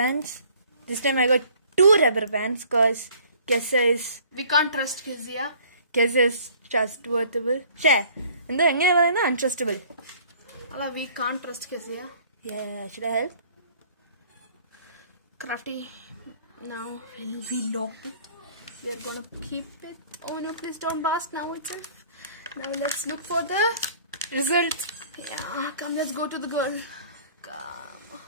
This time I got 2 rubber bands because Kessa is... We can't trust Kezia. Kessa is trustworthy. Share. And then untrustable. We can't trust Kezia. Yeah, should I help? Crafty. Now we locked it. We are gonna keep it. Oh no, please don't blast now itself. Now let's look for the result. Yeah, come, let's go to the girl. Come.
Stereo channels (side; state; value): both; inverted; correlation -0.54